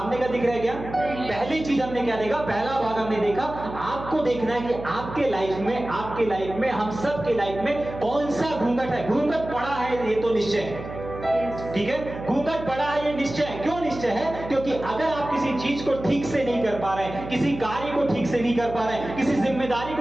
का दिख रहा है क्या? नहीं। पहली चीज हमने क्या देखा? पहला भाग हमने देखा, आपको देखना है कि आपके लाइफ में, हम सब के लाइफ में कौन सा घूंघट है। घूंघट पड़ा है ये तो निश्चय है, ठीक है, घूंघट पड़ा है ये निश्चय है। क्यों निश्चय है? क्योंकि अगर आप किसी चीज को ठीक से नहीं कर पा रहे हैं, किसी कार्य को ठीक से नहीं कर पा रहे हैं, किसी जिम्मेदारी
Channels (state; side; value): noise; right; hum, 11 dB below the sound